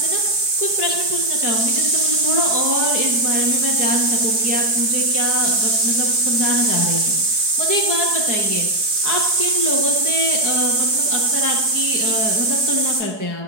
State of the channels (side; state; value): left; late; 4.7 ms